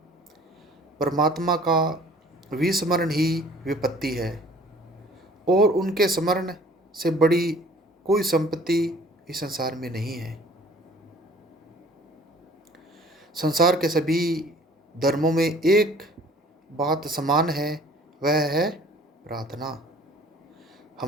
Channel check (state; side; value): normal; both; correlation 0.52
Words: परमात्मा का विस्मरण ही विपत्ति है और उनके स्मरण से बड़ी कोई संपत्ति इस संसार में नहीं है। संसार के सभी धर्मों में एक बात समान है, वह है प्रार्थना।